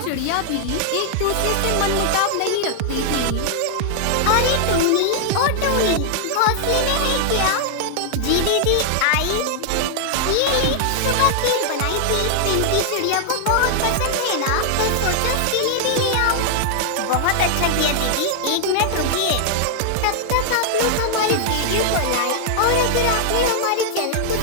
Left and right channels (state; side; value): different; both; correlation -0.01